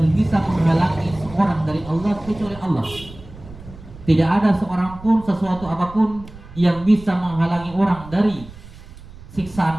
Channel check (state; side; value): noise; right; rumble, 18 dB below the sound